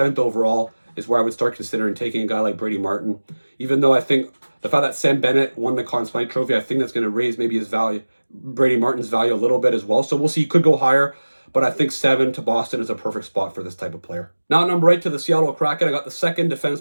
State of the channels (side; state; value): both; inverted; correlation -1.00